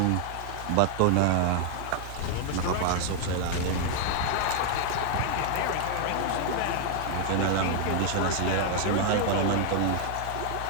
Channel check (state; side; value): different; both; correlation 0.00